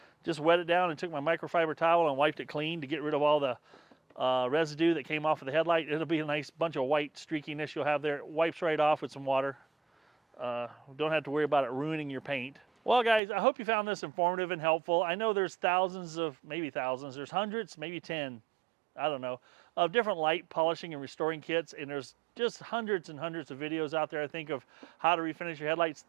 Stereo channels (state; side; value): drops out; left; at 13.2 s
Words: Just wet it down and took my microfiber towel and wiped it clean to get rid of all the residue that came off of the headlight. It'll be a nice bunch of white streakiness you'll have there. It wipes right off with some water. Don't have to worry about it ruining your paint. Well, guys, I hope you found this informative and helpful. I know there's there's hundreds, maybe 10, I don't know, of different light polishing and restoring kits, and there's just hundreds and hundreds of videos out there, I think, of how to refinish your headlights.